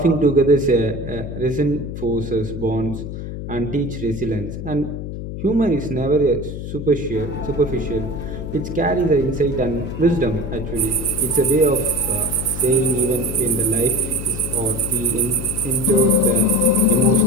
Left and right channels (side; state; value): left; noise; hum, 7 dB below the sound